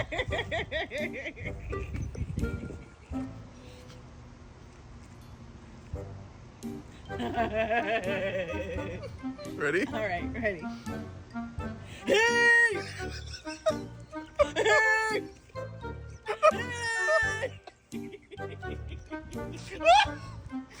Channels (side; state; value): both; identical; correlation 1.00